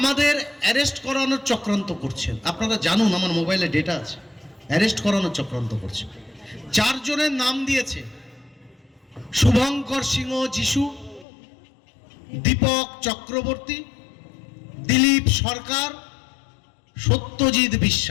অ্যারেস্ট করানোর চক্রান্ত করছেন। আপনারা জানুন, আমার মোবাইলে ডেটা আছে, অ্যারেস্ট করানোর চক্রান্ত করছেন। 4 জনের নাম দিয়েছে: শুভঙ্কর সিংহ যিশু, দীপক চক্রবর্তী, দিলীপ সরকার, সত্যজিৎ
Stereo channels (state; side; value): drops out; right; at 11.2 s